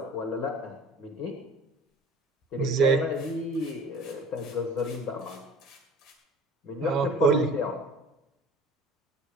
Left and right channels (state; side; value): normal; both; correlation 0.44